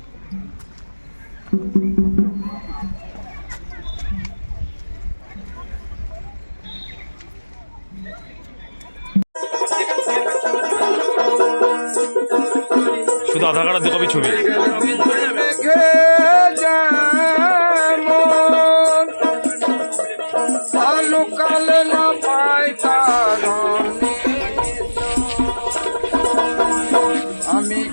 শুধু আধার কার্ড আর 2 কপি ছবি। আমি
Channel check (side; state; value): both; inverted; correlation -1.00